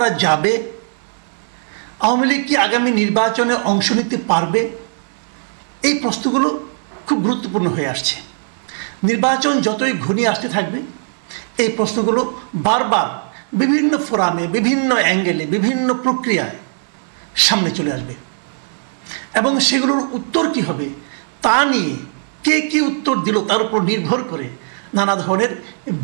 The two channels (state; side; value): silent; left; 67 dB below the other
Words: যাবে, আওয়ামী লীগ কি আগামী নির্বাচনে অংশ নিতে পারবে? এই প্রশ্নগুলো খুব গুরুত্বপূর্ণ হয়ে আসছে। নির্বাচন যতই ঘনিয়ে আসতে থাকবে এই প্রশ্নগুলো বারবার বিভিন্ন ফোরামে, বিভিন্ন অ্যাঙ্গেলে, বিভিন্ন প্রক্রিয়ায় সামনে চলে আসবে এবং সেগুলোর উত্তর কি হবে তা নিয়ে কে কি উত্তর দিল তার উপর নির্ভর করে নানা ধরনের